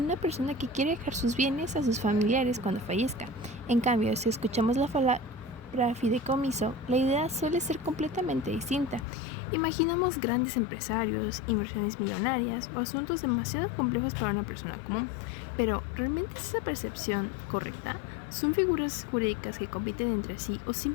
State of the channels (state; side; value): drops out; right; at 9.1 s